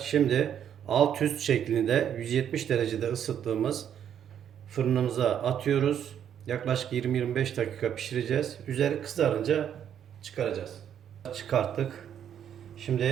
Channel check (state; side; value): quieter; left; 9.3 dB